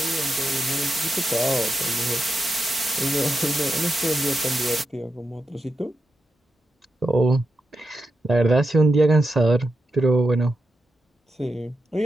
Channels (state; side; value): normal; both; correlation 0.88